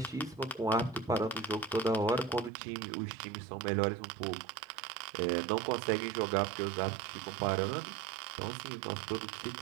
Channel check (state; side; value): drops out; left; at 2.5 s